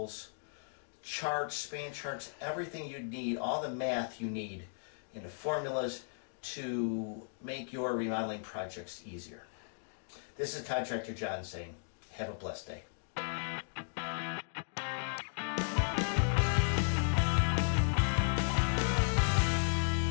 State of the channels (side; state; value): right; silent; digital silence